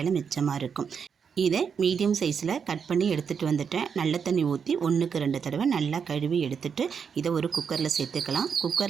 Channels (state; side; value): quieter; left; 6.6 dB